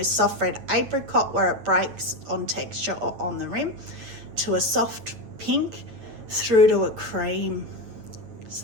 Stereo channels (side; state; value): left; late; 9.0 ms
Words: soft red apricot, where it breaks on texture or on the rim, to a soft pink, through to a cream.